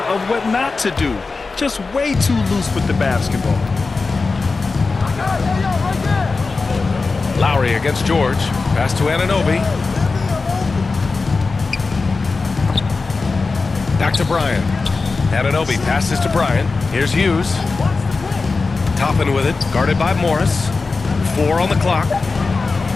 of what not to do. Just way too loose with the basketball. Lowry against George. Pass to Anunoby. Back to Bryant. Anunoby passes to Bryant. Here's Hughes. Toppin with it. Guarded by Morris. 4 on the clock.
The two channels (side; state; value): right; quieter; 4.1 dB